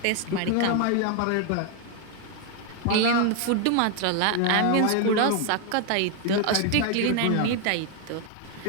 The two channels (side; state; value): both; different; correlation 0.01